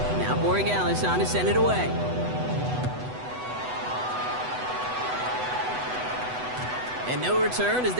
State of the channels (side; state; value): left; late; 8.0 ms